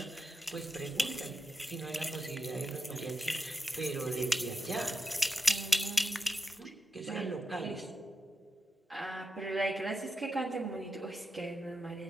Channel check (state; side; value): normal; both; correlation 0.87